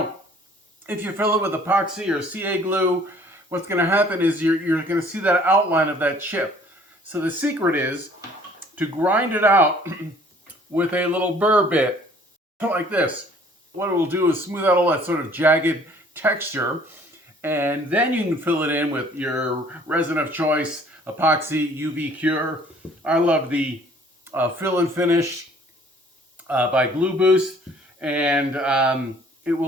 if you fill it with epoxy or CA glue, what's going to happen is you're going to see that outline of that chip. So the secret is to grind it out with a little burr bit, like this. What it will do is smooth out all that sort of jagged texture, and then you can fill it in with your resin of choice, epoxy, UV cure. I love the fill and finish by Glue Boost, and it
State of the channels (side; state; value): both; normal; correlation 0.56